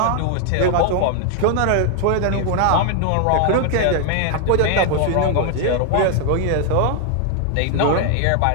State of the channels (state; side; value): different; both; correlation 0.00